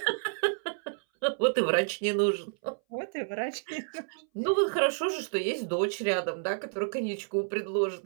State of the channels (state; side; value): silent; left; 58 dB below the other